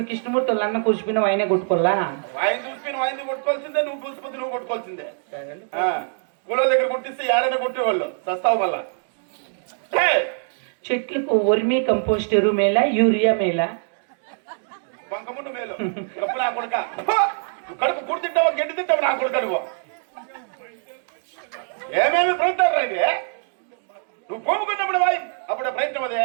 కృష్ణమూర్తి వాళ్ళు అన్న కూర్చుపోయినా ఆయనే కొట్టుకోవాలా? ఆయన చూసిపోయిన ఆయన కొట్టుకోవాల్సిందే, నువ్వు చూసిపోతే నువ్వు కొట్టుకోవాల్సిందే. కూలో దగ్గర కొట్టిస్తే ఏడైనా కొట్టేవాళ్ళు సస్తావు వల్ల. చెట్లకు వర్మీ కంపోస్ట్ ఎరువు మేలా యూరియా మేలా? వంకముండు మేలు. కప్పు నా కొడుక కడుపు కుడి తింటావా గడ్డి తింటావు నా కొడుక నువ్వు ఏమేమి ప్రయత్నాలు రైతే నువ్వు పోముకున్నప్పుడు బాయ్ అప్పుడే ప్రయత్నం అదే.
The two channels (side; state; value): left; silent; digital silence